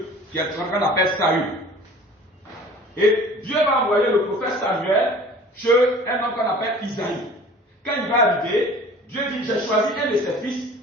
qui est ce qu'on appelle Saül. Et Dieu va envoyer le prophète Samuel chez un homme qu'on appelle Isaïe. Quand il va arriver, Dieu dit, j'ai choisi un de ses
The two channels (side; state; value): both; normal; correlation 0.46